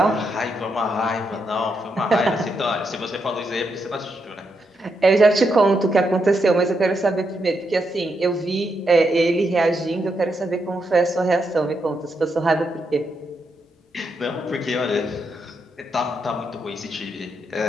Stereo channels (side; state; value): both; normal; correlation 0.81